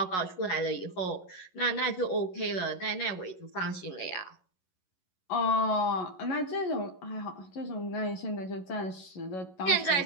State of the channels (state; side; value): late; right; 11 ms